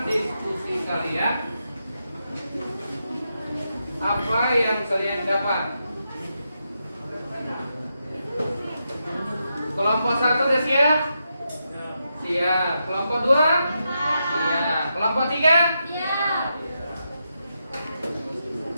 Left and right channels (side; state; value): both; inverted; correlation -0.85